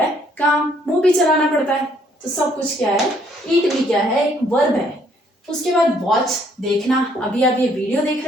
है? काम, मुंह भी चलाना पड़ता है। तो सब कुछ क्या है? ईट भी क्या है? एक वर्ब है। उसके बाद वॉच, देखना। अभी आप ये वीडियो देख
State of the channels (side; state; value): both; normal; correlation 0.66